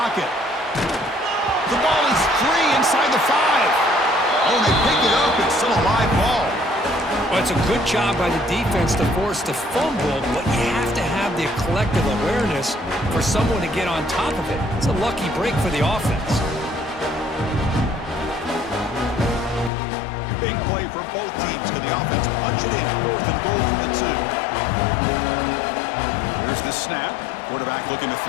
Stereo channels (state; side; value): drops out; right; at 19.7 s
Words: The ball is free inside the 5. Oh, they pick it up. It's still a live ball. Well, it's a good job by the defense to force the fumble, but you have to have the collective awareness for someone to get on top of it. It's a lucky break for the offense. Big play for both teams. Can the offense punch it in? 4th and goal from the 2. Here's the snap. Quarterback looking to